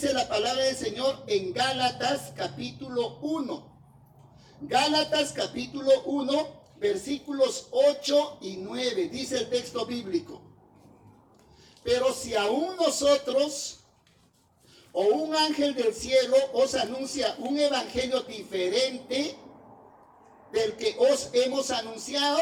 la palabra del Señor en Gálatas capítulo 1. Gálatas capítulo 1, versículos 8 y 9. Dice el texto bíblico: pero si aún nosotros o un ángel del cielo os anuncia un evangelio diferente del que os hemos anunciado,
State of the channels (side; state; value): both; identical; correlation 1.00